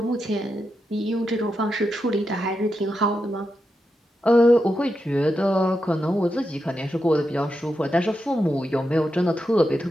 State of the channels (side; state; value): both; normal; correlation 0.87